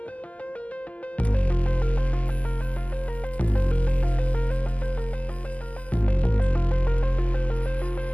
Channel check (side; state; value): right; late; 0.069 ms